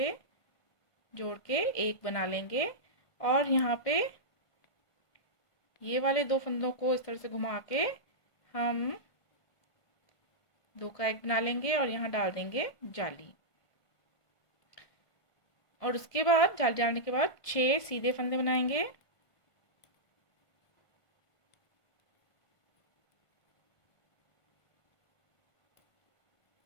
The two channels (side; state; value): right; late; 1.5 ms